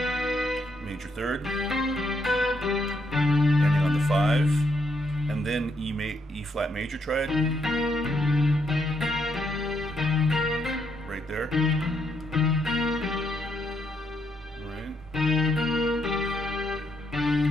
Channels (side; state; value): both; normal; correlation 0.76